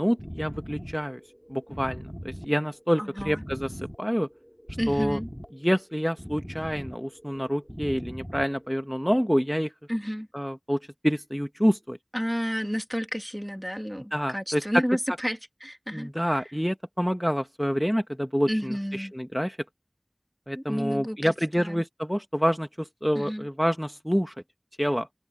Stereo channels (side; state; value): both; identical; correlation 1.00